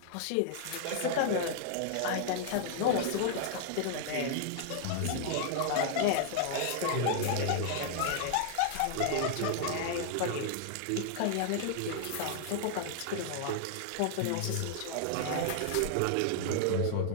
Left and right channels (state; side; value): different; both; correlation -0.01